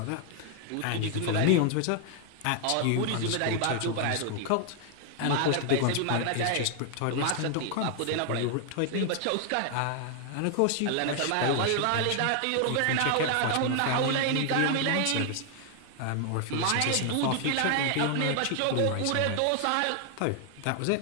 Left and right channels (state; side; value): different; both; correlation 0.00